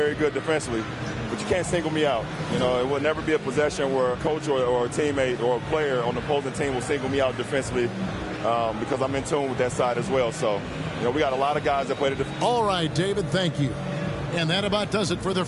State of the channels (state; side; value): identical; both; correlation 1.00